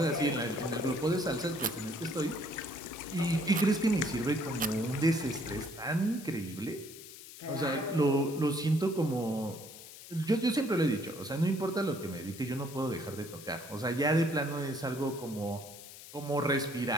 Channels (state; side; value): noise; left; hiss, 15 dB below the sound